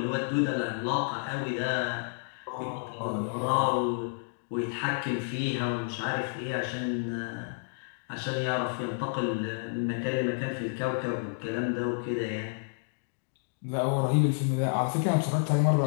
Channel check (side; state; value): right; silent; digital silence